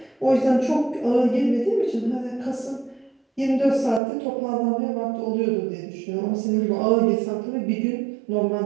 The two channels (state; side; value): drops out; left; at 4.0 s